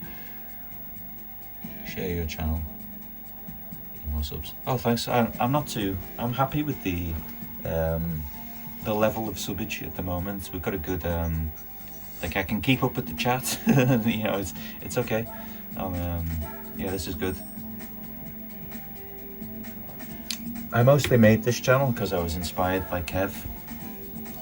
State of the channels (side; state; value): right; noise; hum, 20 dB below the sound